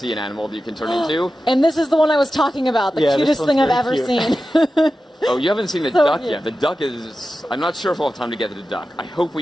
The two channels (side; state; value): both; normal; correlation 0.93